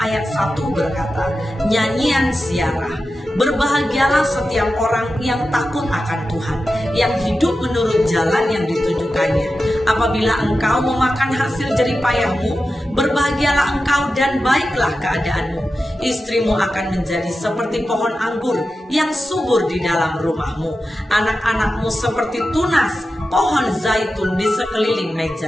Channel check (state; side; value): normal; both; correlation 0.92